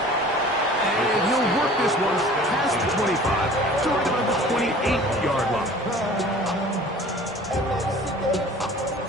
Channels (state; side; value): normal; both; correlation 0.46